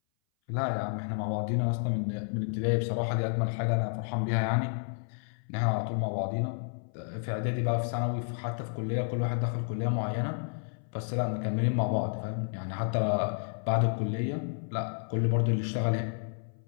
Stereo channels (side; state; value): right; silent; 57 dB below the other